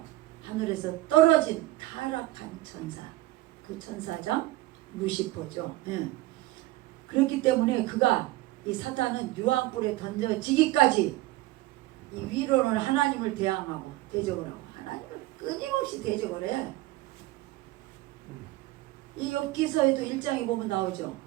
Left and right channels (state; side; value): quieter; left; 17.8 dB